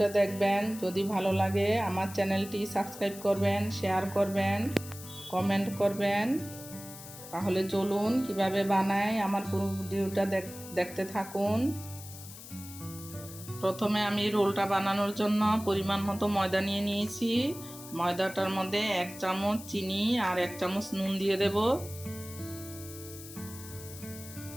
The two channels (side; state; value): left; noise; hiss, 14 dB below the sound